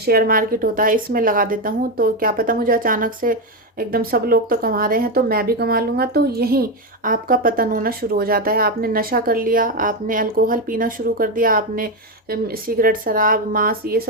मार्केट होता है इसमें लगा देता हूँ, तो क्या पता मुझे अचानक से एकदम सब लोग तो कमा रहे हैं तो मैं भी कमा लूँगा, तो यहीं आपका पतन होना शुरू हो जाता है। आपने नशा कर लिया, आपने अल्कोहल पीना शुरू कर दिया, आपने सिगरेट, शराब, मांस, ये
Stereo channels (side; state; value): both; normal; correlation 0.09